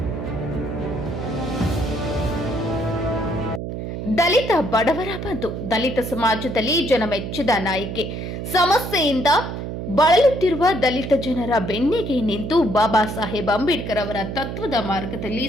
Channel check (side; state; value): right; noise; hum, 6 dB below the sound